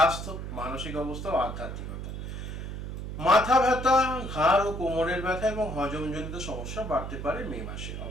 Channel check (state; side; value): noise; right; hum, 7 dB below the sound